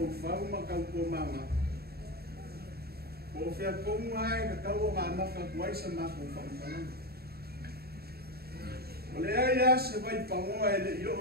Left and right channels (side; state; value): left; late; 0.46 ms